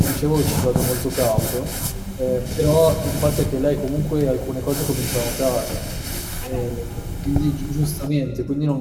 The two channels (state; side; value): identical; both; correlation 1.00